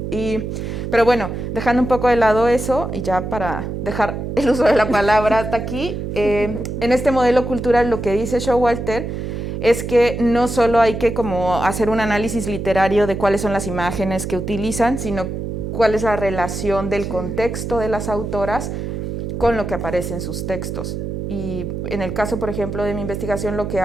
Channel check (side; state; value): right; noise; hum, 5 dB below the sound